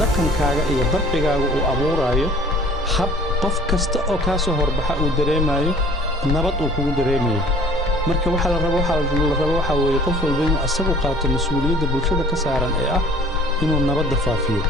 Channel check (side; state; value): both; normal; correlation 0.51